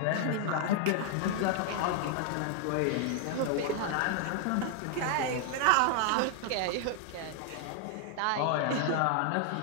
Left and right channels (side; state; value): both; different; correlation 0.00